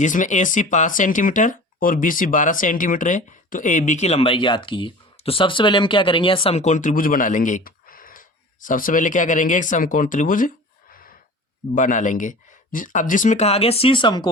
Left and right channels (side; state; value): both; normal; correlation 0.39